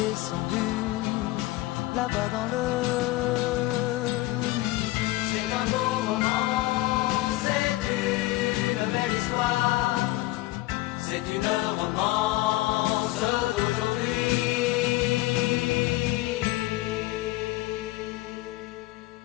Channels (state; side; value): quieter; right; 18.5 dB